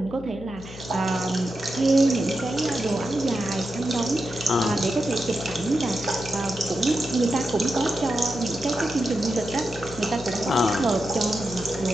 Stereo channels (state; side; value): noise; left; hum, 15 dB below the sound